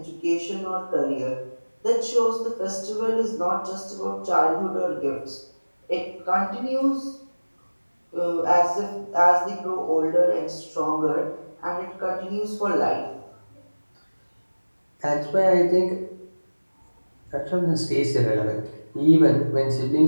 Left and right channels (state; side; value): inverted; both; correlation -1.00